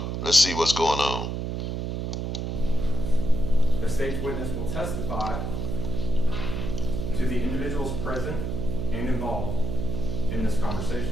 Let's see what's going on. The state's witness will testify to the individuals present and involved in this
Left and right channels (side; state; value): right; noise; hum, 3 dB below the sound